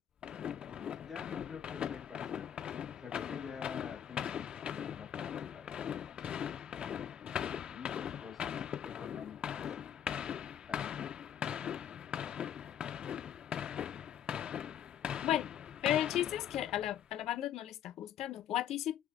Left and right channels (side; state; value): right; quieter; 9.8 dB